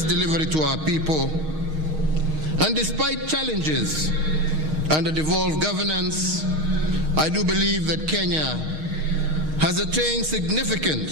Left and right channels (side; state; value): left; late; 6.4 ms